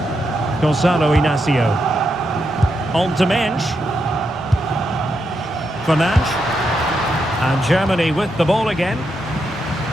Gonzalo Inacio. On to Mensch. Fernandes. And Germany with the ball again.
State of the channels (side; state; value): both; normal; correlation 0.83